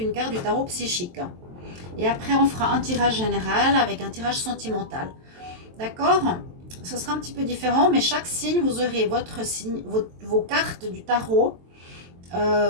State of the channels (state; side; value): late; left; 23 ms